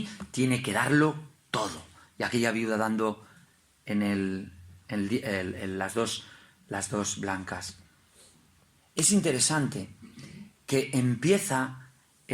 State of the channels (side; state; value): both; identical; correlation 1.00